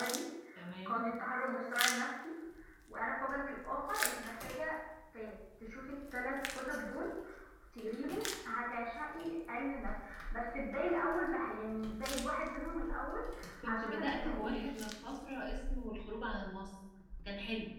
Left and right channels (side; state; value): both; identical; correlation 1.00